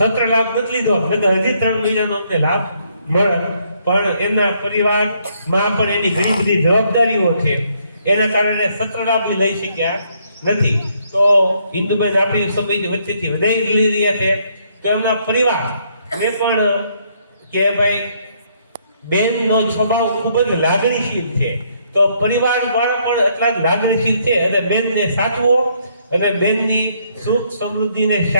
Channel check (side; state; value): both; inverted; correlation -0.71